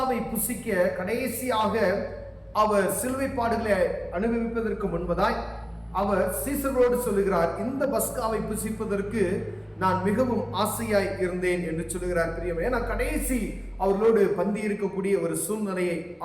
புசிக்க கடைசியாக அவர் சிலுவை பாடுகளை அனுபவிப்பதற்கு முன்பதாய் அவர் சீசர்களோடு சொல்லுகிறார், இந்த பஸ்காவை புசிப்பதற்கு நான் மிகவும் ஆசையாய் இருந்தேன் என்று சொல்லுகிறார். பிரியமே, ஏன்னா கடைசி அவர்களோடு பந்தி இருக்கக்கூடிய ஒரு சூழ்நிலையை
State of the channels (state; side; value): identical; both; correlation 1.00